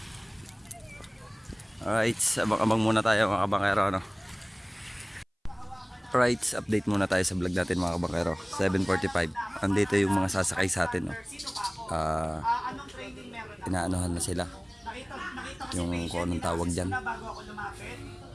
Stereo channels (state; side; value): identical; both; correlation 1.00